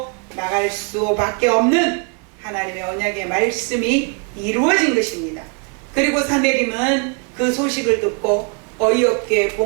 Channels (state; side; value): quieter; left; 35.3 dB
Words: 나갈 수밖에 없는 하나님의 언약의 말씀이 이루어진 것입니다. 그리고 사내림은 그 소식을 듣고 어이없게